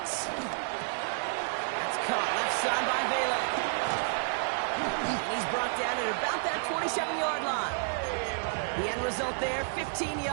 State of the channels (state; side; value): silent; left; digital silence